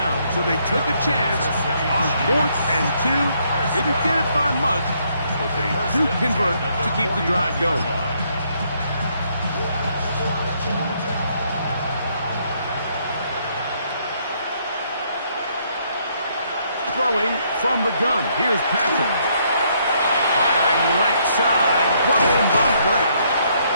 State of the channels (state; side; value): inverted; both; correlation -0.70